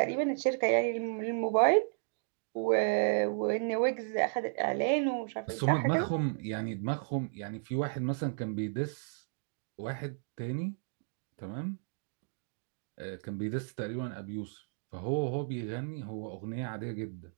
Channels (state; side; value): silent; left; digital silence